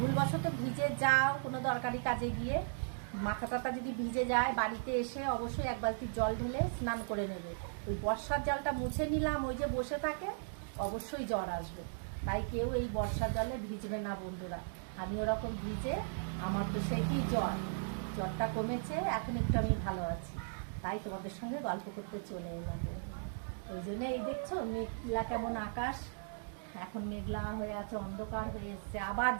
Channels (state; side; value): silent; left; digital silence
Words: ভিজে যাও কোনো দরকারি কাজে গিয়ে, মাথা টাথা যদি ভিজে যায়, বাড়িতে এসে অবশ্যই এক বালতি জল ঢেলে স্নান করে নেবে। ওই বর্ষার জলটা মুছে নিলাম, ওই যে বসে থাকে, অবশ্যই জ্বর আসবে। তাই কেউ এই বর্ষার জলে ভিজবে না বন্ধুরা। আমি ওরকম ভিজে আমার তো সেই কি জ্বরটা কমেছে, এখন একটু আমি ভালো আছি। তাই তোমাদের সঙ্গে গল্প করতে চলে এলাম। ওই জন্য এই দেখছো মেঘলা কেমন আকাশ, এখন মেঘলা হয়ে আছে, অন্ধকার হয়ে এসছে, আবার